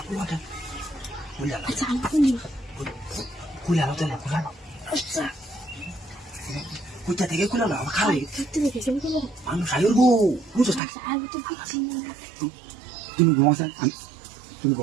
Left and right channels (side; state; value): left; drops out; at 10.8 s